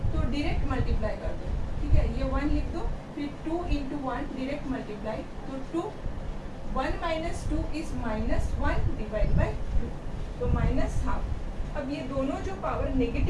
तो डायरेक्ट मल्टीप्लाई कर दो। ठीक है, ये 1 लिख दो, फिर 2 इंटू 1 डायरेक्ट मल्टीप्लाई तो 2, 1 माइनस 2 इज -1 डिवाइड बाई 2 तो -हाफ। अब ये दोनों जो पावर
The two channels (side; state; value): both; identical; correlation 1.00